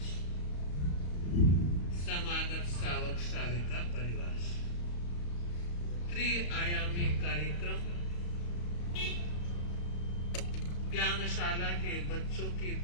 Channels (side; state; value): right; late; 34 ms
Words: समागत श्रावक श्राविका परिवार, त्रिआयामी कार्यक्रम ज्ञानशाला के बच्चों की